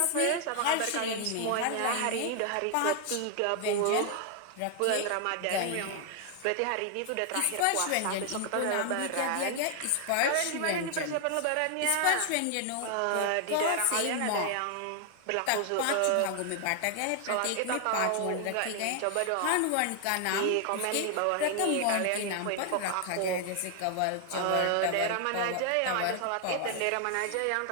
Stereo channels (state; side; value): different; both; correlation 0.00